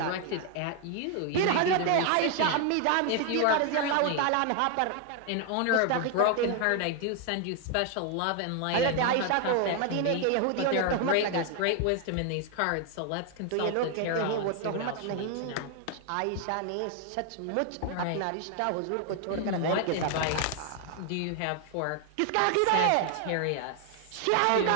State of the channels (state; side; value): different; both; correlation 0.00